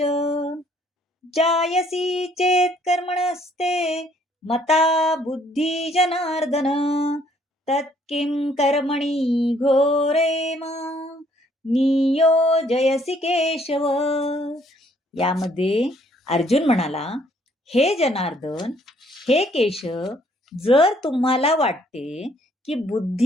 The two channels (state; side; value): normal; both; correlation 0.64